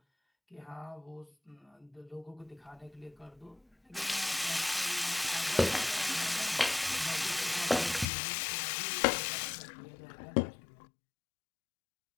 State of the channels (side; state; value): right; drops out; at 8.1 s